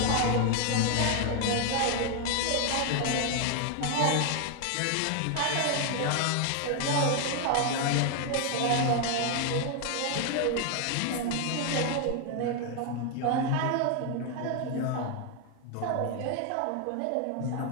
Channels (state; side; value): different; both; correlation 0.00